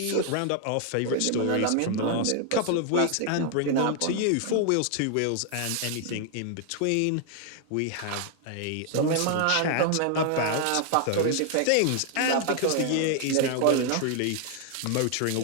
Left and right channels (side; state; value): both; different; correlation 0.00